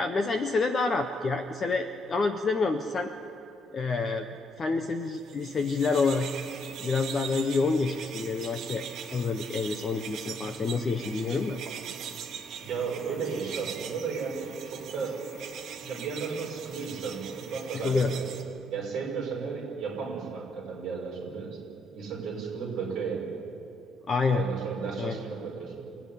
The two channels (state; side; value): normal; both; correlation 0.72